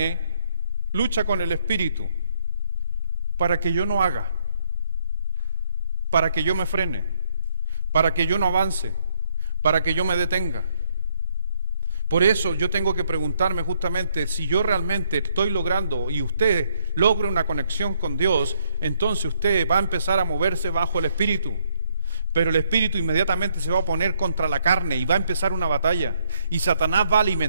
lucha con el espíritu para que yo no haga, para que yo me frene, para que yo no avance, para que yo me detenga. Por eso yo tengo que preguntarme justamente si yo realmente estoy logrando y usted logra una conexión con Dios, entonces usted va a empezar a moverse bajo el Espíritu. Pero el Espíritu inmediatamente se va a poner contra la carne y va a empezar una batalla. Y Satanás va a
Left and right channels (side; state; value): both; inverted; correlation -0.69